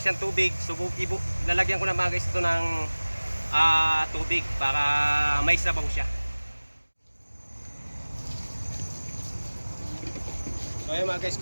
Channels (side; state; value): both; inverted; correlation -1.00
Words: siyang tubig, so lalagyan ko na mga guys ito ng tubig para may sabaw siya. So ayun mga guys,